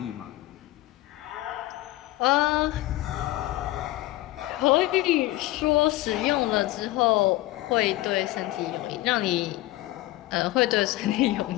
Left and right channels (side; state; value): right; quieter; 17.3 dB